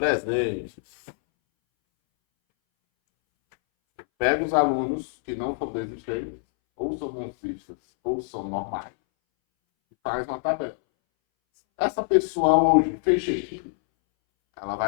Pega os alunos que não são desistentes, ou são bolsistas, ou são normais, e faz uma tabela. Essa pessoa hoje fez check-in, ela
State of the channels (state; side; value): silent; right; 62 dB below the other